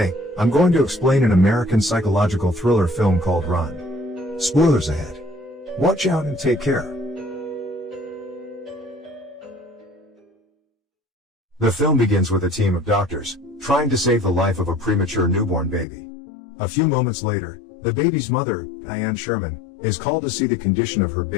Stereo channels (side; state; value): right; drops out; at 15.9 s